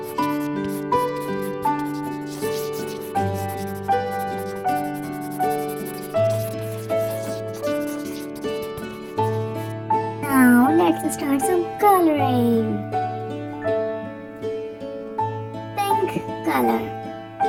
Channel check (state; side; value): identical; both; correlation 1.00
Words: Now let's start some coloring. Pink color.